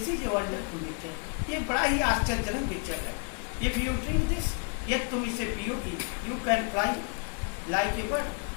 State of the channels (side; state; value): right; quieter; 38.2 dB